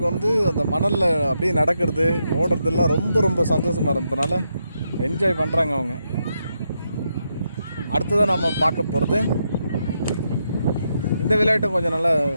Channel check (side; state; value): both; inverted; correlation -0.82